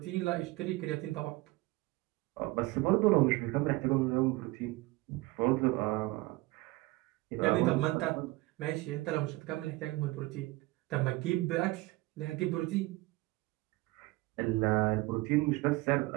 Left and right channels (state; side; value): quieter; left; 20.5 dB